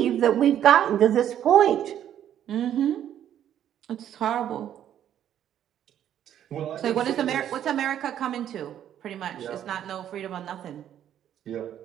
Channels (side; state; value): left; quieter; 10.5 dB